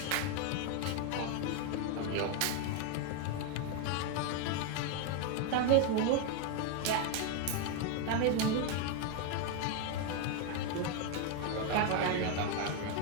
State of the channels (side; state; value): both; different; correlation 0.01